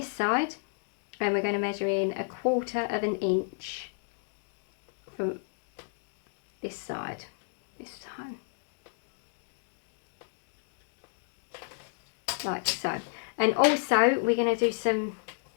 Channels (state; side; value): silent; right; digital silence